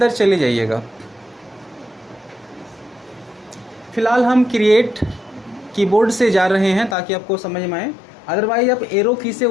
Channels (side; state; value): right; drops out; at 7.0 s